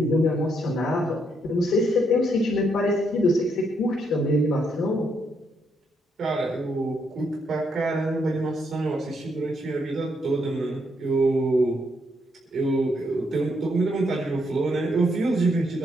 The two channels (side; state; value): both; normal; correlation 0.76